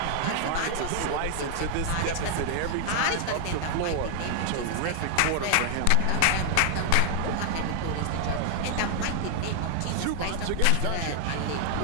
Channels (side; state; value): both; different; correlation 0.00